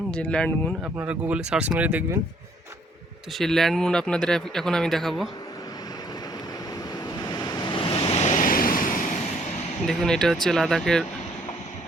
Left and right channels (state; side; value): normal; both; correlation 0.65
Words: যে ল্যান্ডমুন আপনারা গুগলে সার্চ মেরে দেখবেন। তো সেই ল্যান্ডমুন আপনাদের এখন আমি দেখাবো। দেখুন, এটা হচ্ছে লাদাখের